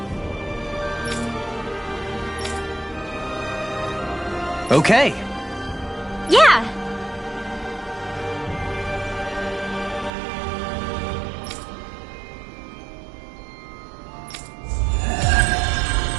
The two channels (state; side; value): drops out; left; at 10.1 s